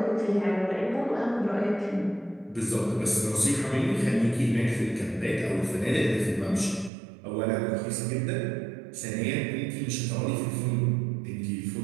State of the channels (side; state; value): left; drops out; at 6.9 s